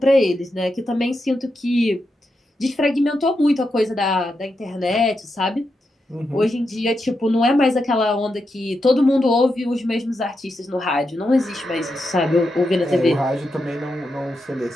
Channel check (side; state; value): both; normal; correlation 0.86